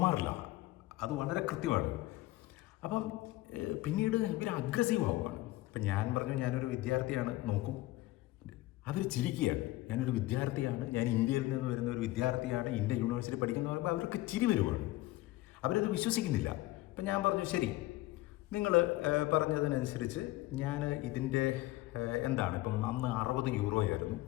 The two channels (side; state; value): right; quieter; 18.0 dB